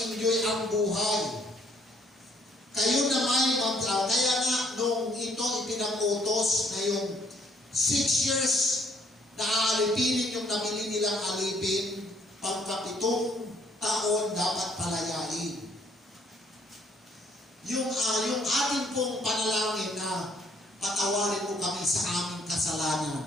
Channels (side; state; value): both; normal; correlation 0.66